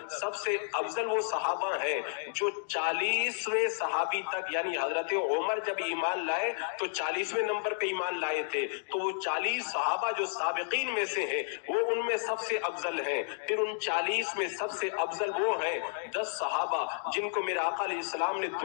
سب سے افضل وہ صحابہ ہیں جو 40ویں صحابی تک، یعنی حضرت عمر جب ایمان لائے تو 40ویں نمبر پہ ایمان لائے تھے، تو وہ 40 صحابہ جو سابقین میں سے ہیں وہ ان میں سب سے افضل ہیں. پھر ان 40 میں سب سے افضل وہ ہیں 10 صحابہ جن کو میرے آقا علیہ السلام نے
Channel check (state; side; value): silent; right; digital silence